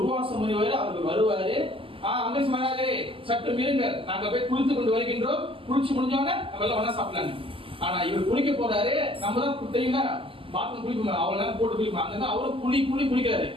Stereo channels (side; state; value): left; late; 0.26 ms